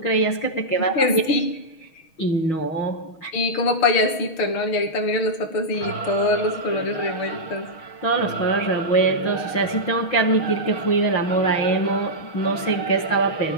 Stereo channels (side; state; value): right; late; 6.3 ms